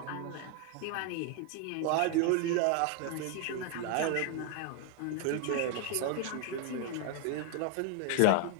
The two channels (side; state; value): both; different; correlation 0.00